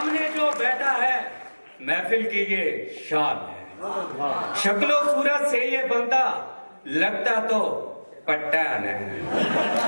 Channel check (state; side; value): inverted; both; correlation -1.00